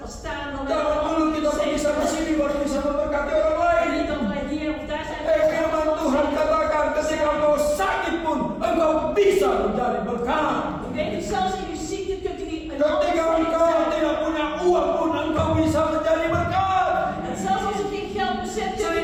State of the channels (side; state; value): both; identical; correlation 1.00